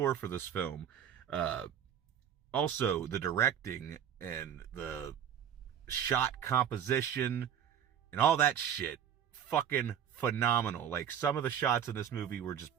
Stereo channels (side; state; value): left; quieter; 9.1 dB